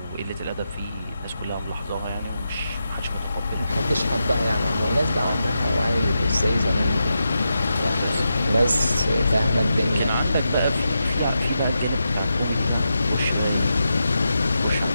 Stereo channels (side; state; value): both; inverted; correlation -0.87